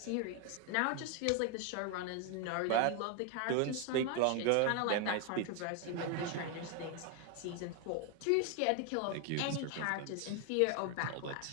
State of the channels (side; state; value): both; different; correlation 0.01